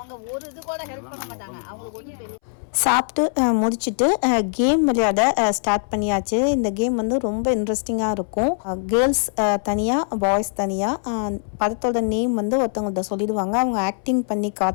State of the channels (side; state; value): right; silent; 64 dB below the other